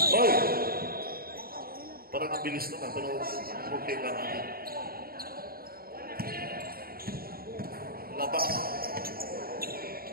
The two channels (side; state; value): left; late; 0.43 ms